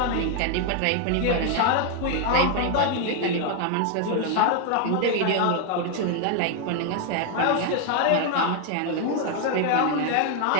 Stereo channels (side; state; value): both; different; correlation 0.01